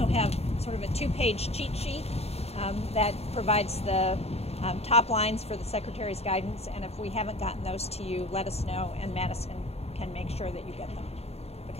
have sort of a 2-page cheat sheet that provides the top lines for the Secretary's guidance, and if we haven't gotten those to you, let us know, and Madison can make sure that you get them,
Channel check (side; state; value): right; late; 0.30 ms